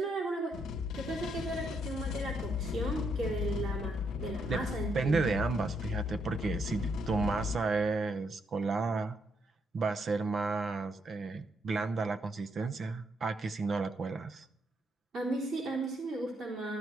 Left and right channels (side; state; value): both; normal; correlation 0.76